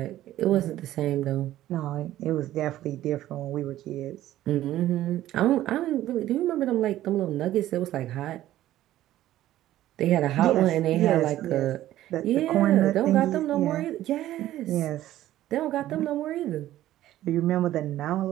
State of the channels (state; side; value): quieter; left; 13.9 dB